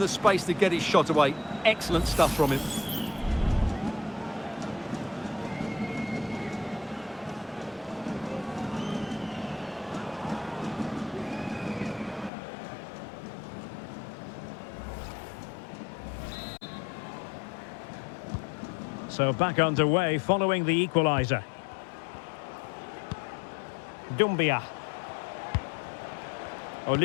space to get his shot away. Excellent stuff from him. So back underway following the equaliser. Doumbia.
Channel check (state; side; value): drops out; right; at 12.3 s